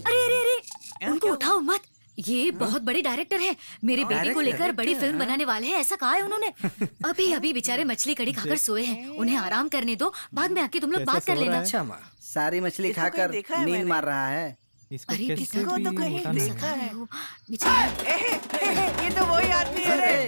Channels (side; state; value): both; inverted; correlation -1.00